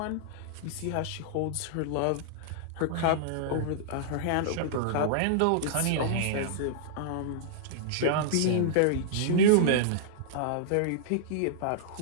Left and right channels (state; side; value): different; both; correlation -0.02